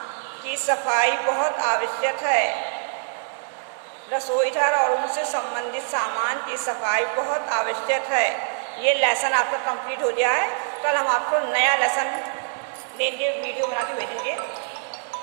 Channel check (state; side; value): silent; left; 62 dB below the other